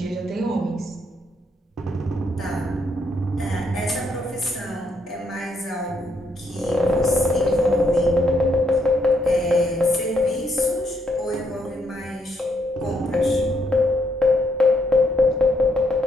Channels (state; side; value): normal; both; correlation 0.75